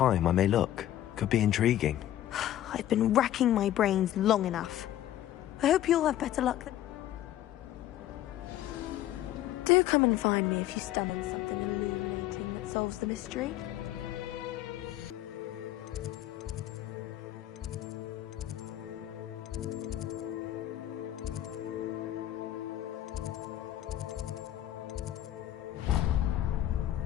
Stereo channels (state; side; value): quieter; right; 12.9 dB